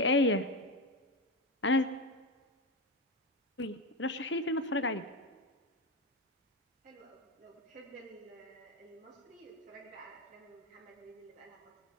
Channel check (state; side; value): normal; both; correlation 0.15